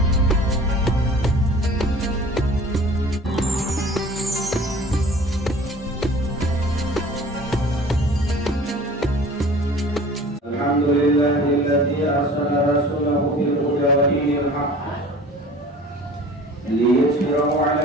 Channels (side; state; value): both; normal; correlation 0.45